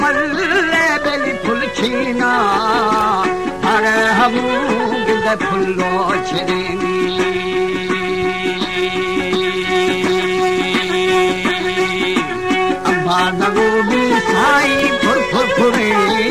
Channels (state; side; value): identical; both; correlation 1.00